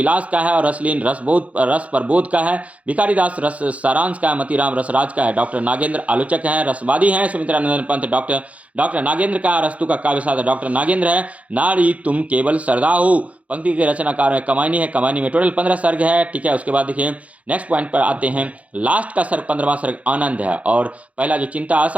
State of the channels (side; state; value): left; late; 0.066 ms